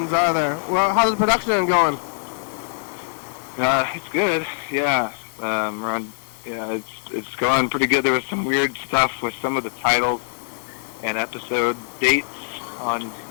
are there? Well, how's the production going? It's good. Yeah. It's going pretty good. There was some weird stuff with some of the titles and episode dates on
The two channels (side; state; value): right; silent; 60 dB below the other